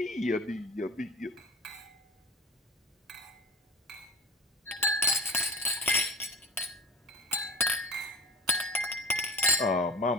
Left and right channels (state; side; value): normal; both; correlation 0.39